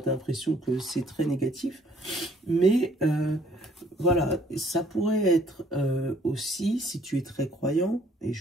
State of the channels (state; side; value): normal; both; correlation 0.62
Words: as l'impression que c'est très négatif. Mais, voilà, ça pourrait être aussi, si tu es très croyant, et